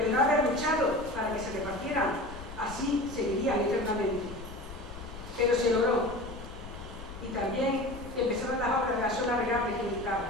el no haber luchado para que se repartieran, así seguirían eternamente. Pero se logró. Y también empezaron las obras de la zona regable que buscaba.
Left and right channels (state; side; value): noise; left; rumble, 13 dB below the sound